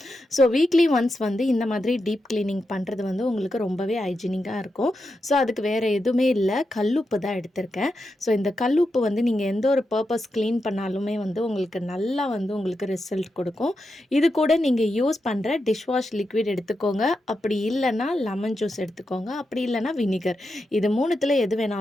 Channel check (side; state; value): both; normal; correlation 0.87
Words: ஸோ வீக்லி ஒன்ஸ் வந்து இந்த மாதிரி டீப் கிளீனிங் பண்ணுறது வந்து உங்களுக்கு ரொம்பவே ஹைஜீனிக்காக இருக்கும். ஸோ அதுக்கு வேறு எதுவுமே இல்லை, கல்லுப்பு தான் எடுத்திருக்கேன். ஸோ இந்த கல்லுப்பு வந்து நீங்கள் எந்த ஒரு பர்பஸ் க்ளீன் பண்ணாலுமே வந்து உங்களுக்கு நல்லா வந்து உங்களுக்கு ரிசல்ட் கொடுக்கும். இது கூட நீங்கள் யூஸ் பண்ணுற டிஷ்வாஷ் லிக்விட் எடுத்துக்கோங்க. அப்படி இல்லைன்னா லெமன் ஜூஸ் எடுத்துக்கோங்க. அப்படி இல்லைன்னா வினிகர். இது மூணுத்தில் எது